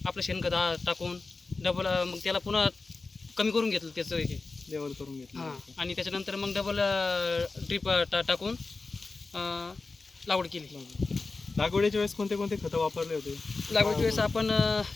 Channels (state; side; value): quieter; right; 3.8 dB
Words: आपलं शेणखत टाकून डबल मग त्याला पुन्हा कमी करून घेतलं त्याचं हे लेवल करून घेतलं. हां, आणि त्याच्यानंतर मग डबल ड्रीप टाकून लागवड केली. लागवडीच्या वेळेस कोणते कोणते खतं वापरले होते. लागवडीच्या वेळेस आपण